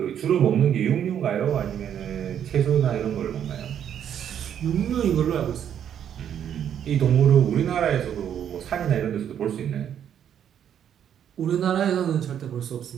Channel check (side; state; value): left; quieter; 9.3 dB